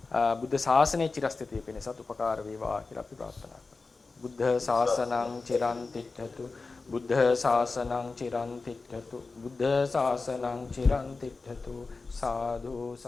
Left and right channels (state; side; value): quieter; right; 4.0 dB